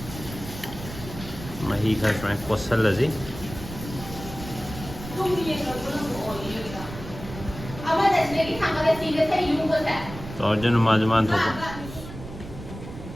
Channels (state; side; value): noise; right; rumble, 12 dB below the sound